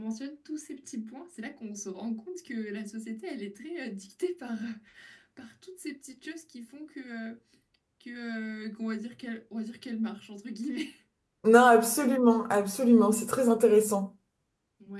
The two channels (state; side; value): identical; both; correlation 1.00